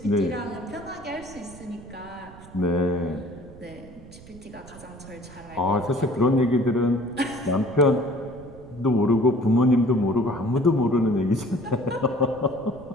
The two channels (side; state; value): right; noise; rumble, 20 dB below the sound